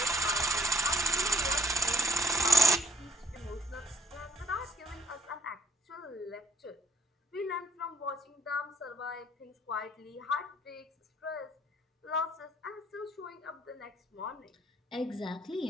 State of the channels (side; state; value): both; normal; correlation 0.67